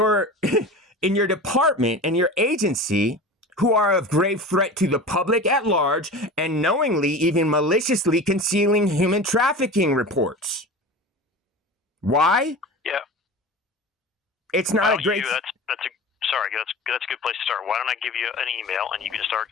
in your department and your agency who are of grave threat to the public at large and knowingly, even maliciously concealing human trafficking reports. Why? Yeah. It's not a great... That's a good place to start. Why don't I give you an email and you can start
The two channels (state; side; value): normal; both; correlation 0.33